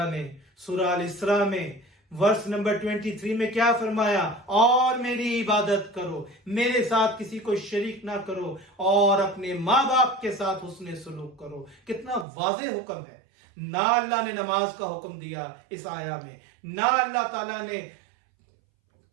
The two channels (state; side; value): drops out; left; at 12.2 s